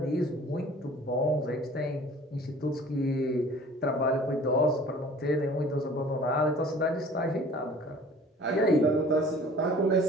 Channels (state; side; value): normal; both; correlation 0.48